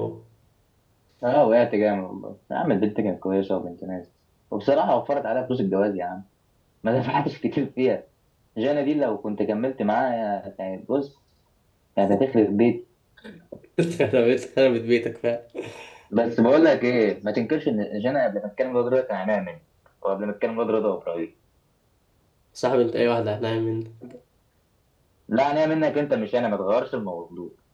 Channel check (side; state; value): both; identical; correlation 1.00